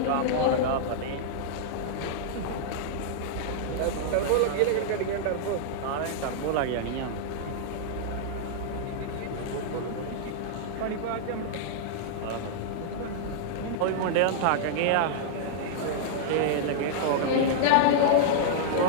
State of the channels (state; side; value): different; both; correlation -0.02